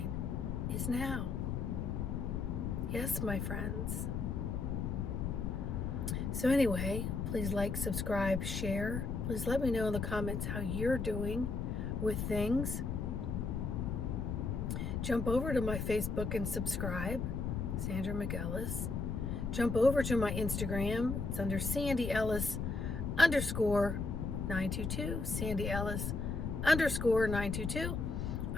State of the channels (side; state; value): left; noise; rumble, 2 dB below the sound